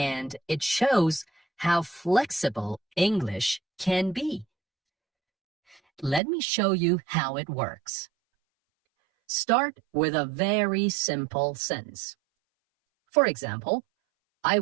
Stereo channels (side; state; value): left; drops out; at 6.2 s